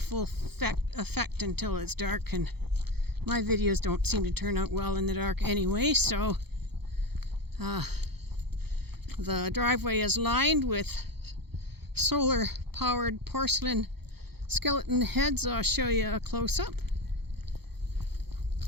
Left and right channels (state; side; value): late; left; 0.97 ms